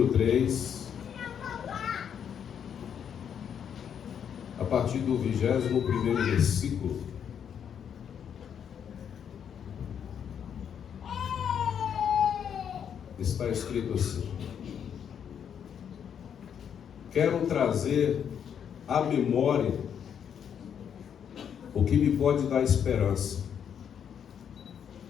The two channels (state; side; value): quieter; right; 8.2 dB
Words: 3, a partir do 21º versículo. Está escrito assim: quero trazer à memória o que me pode dar esperança.